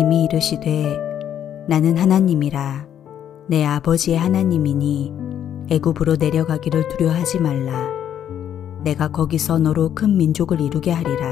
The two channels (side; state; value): right; quieter; 9.9 dB